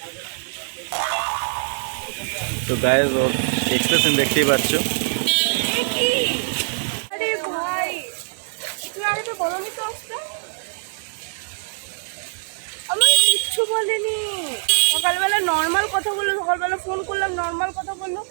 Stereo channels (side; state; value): left; silent; digital silence